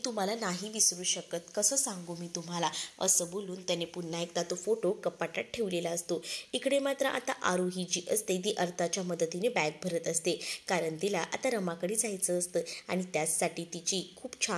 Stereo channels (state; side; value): identical; both; correlation 1.00